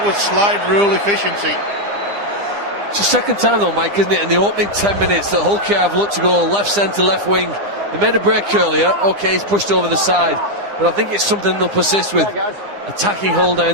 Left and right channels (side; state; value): left; late; 9.9 ms